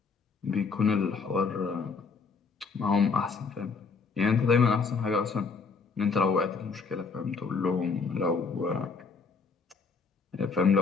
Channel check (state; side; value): quieter; right; 4.9 dB